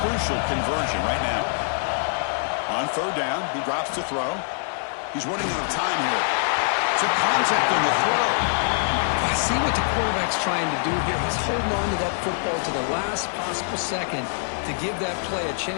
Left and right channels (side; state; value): right; silent; digital silence